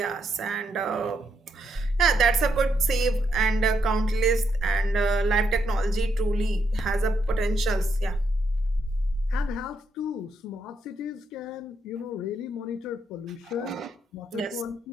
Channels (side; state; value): both; normal; correlation 0.78